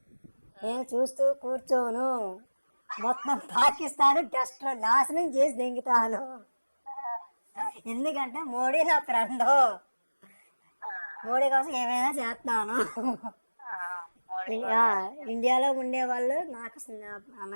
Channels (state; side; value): inverted; both; correlation -1.00